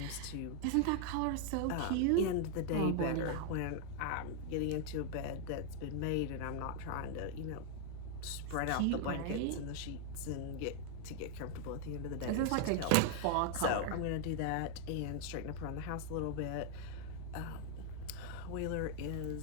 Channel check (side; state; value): both; different; correlation 0.00